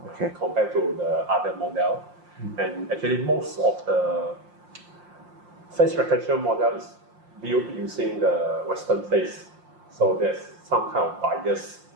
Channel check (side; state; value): left; late; 5.7 ms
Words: okay. Compared to the other model. And actually most of the face recognition model is built using the Western face. So there's some kind of bias.